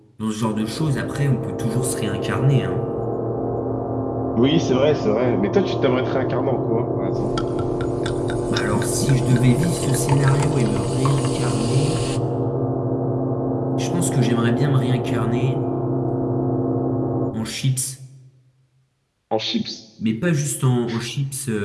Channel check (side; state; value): both; identical; correlation 1.00